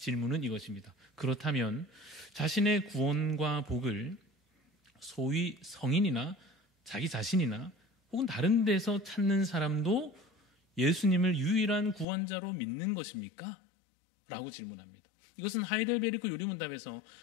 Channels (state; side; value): drops out; right; at 12.1 s